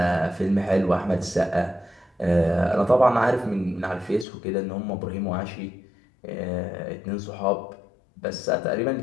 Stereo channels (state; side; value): drops out; right; at 4.2 s